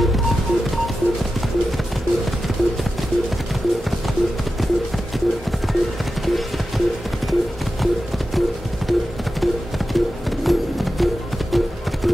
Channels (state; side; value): normal; both; correlation 0.92